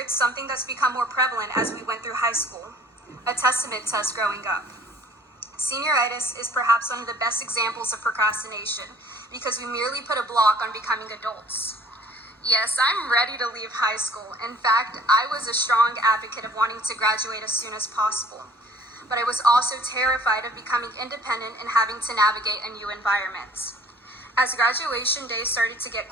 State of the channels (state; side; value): normal; both; correlation 0.52